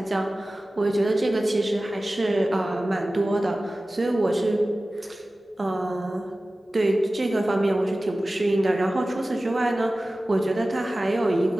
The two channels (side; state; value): both; normal; correlation 0.96